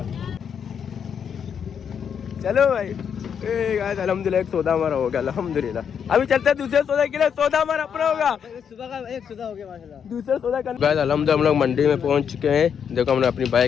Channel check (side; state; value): right; quieter; 7.6 dB